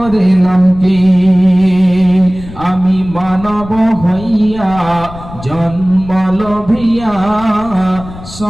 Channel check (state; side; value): noise; left; rumble, 15 dB below the sound